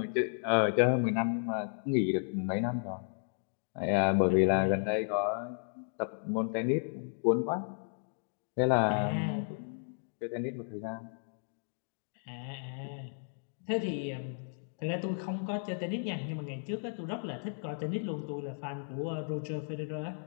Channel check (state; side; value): silent; right; digital silence